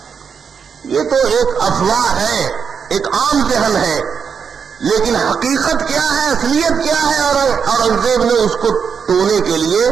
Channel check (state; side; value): quieter; left; 6.5 dB